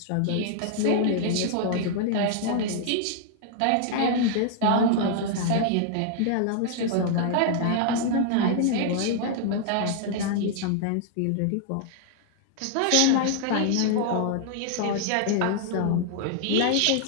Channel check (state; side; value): different; both; correlation -0.01